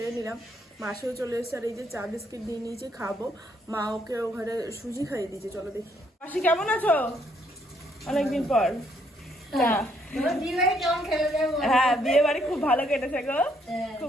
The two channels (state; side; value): normal; both; correlation 0.70